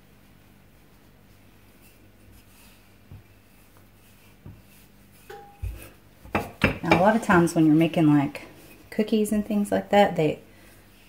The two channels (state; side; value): identical; both; correlation 1.00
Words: Now, a lot of times when you're making like cookies and things like that, they